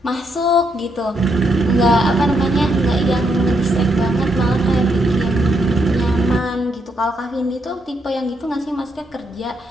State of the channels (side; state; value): both; normal; correlation 0.77